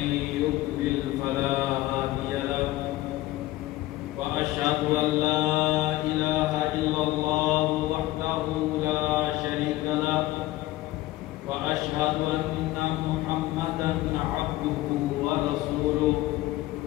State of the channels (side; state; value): right; quieter; 17.0 dB